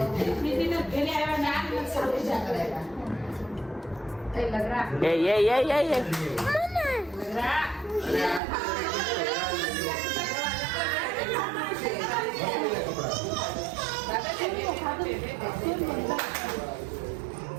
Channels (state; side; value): drops out; left; at 8.4 s